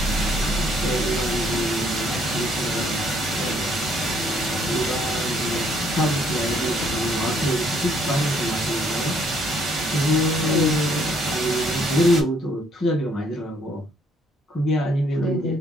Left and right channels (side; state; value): both; normal; correlation 0.66